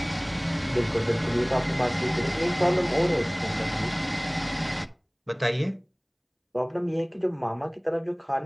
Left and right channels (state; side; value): identical; both; correlation 1.00